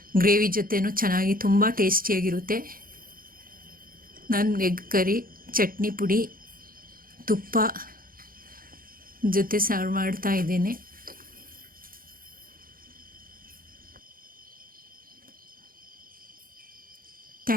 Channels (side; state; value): left; late; 0.41 ms